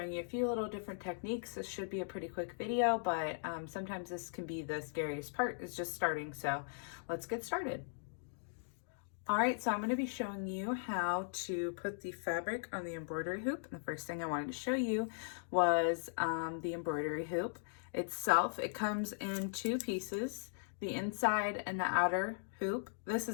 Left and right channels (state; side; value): silent; right; digital silence